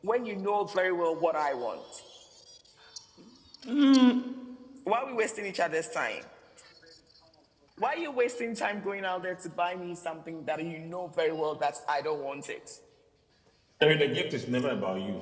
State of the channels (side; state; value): both; identical; correlation 1.00